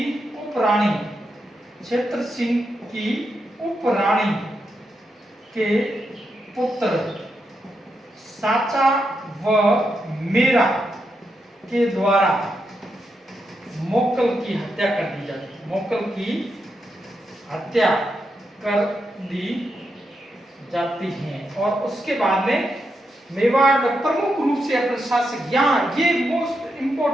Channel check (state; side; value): normal; both; correlation 0.84